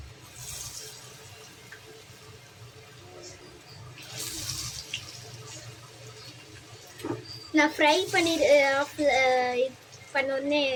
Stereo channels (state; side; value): identical; both; correlation 1.00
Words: நான் ஃப்ரை பண்ணோடனே